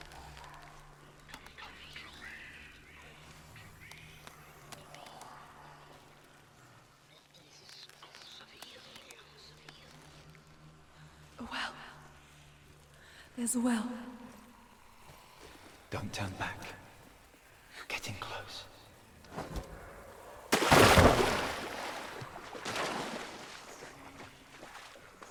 A well. There's a well. Don't turn back. You're getting close.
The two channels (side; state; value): both; identical; correlation 1.00